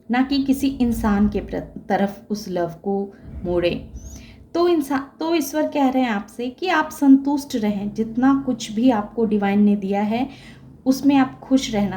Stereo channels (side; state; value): both; identical; correlation 1.00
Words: ना कि किसी इंसान के तरफ उस लव को मोड़ें। तो ईश्वर कह रहे हैं आपसे कि आप संतुष्ट रहें। जितना कुछ भी आपको डिवाइन ने दिया है उसमें आप खुश